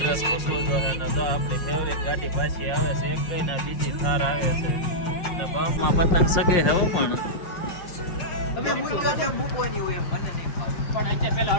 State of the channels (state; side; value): late; right; 5.5 ms